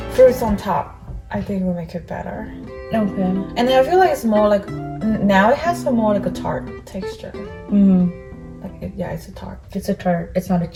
fruits on top. I think will make it better. Okay. And then I feel like it's more like, now it has some more like a tart texture. Like yeah, it's a tart. It's a tart. It's not a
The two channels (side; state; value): both; identical; correlation 1.00